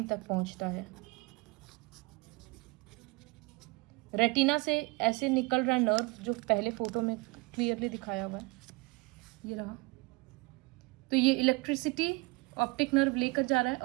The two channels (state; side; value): quieter; left; 25.9 dB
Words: तक पहुंचता है. रेटिना से ऐसे निकल रहा है नर्व जो पहले फोटो में क्लियरली दिखाया हुआ है, ये रहा. तो ये इलेक्ट्रिसिटी ऑप्टिक नर्व लेकर जा रहा है